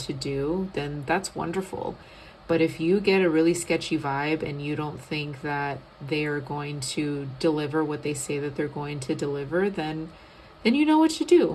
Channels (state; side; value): identical; both; correlation 1.00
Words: do, then that's wonderful. But if you get a really sketchy vibe and you don't think that they are going to deliver what they say that they're going to deliver, then you know what to